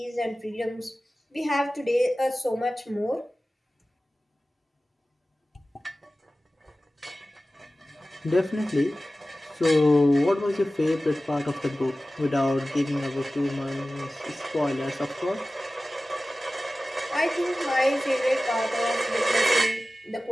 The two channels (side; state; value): both; normal; correlation 0.96